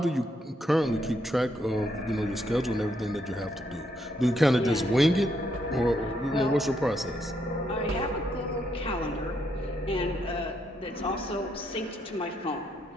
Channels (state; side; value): normal; both; correlation 0.76